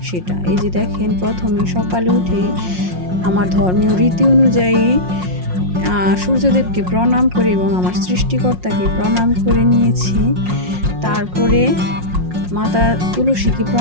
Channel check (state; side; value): late; left; 5.6 ms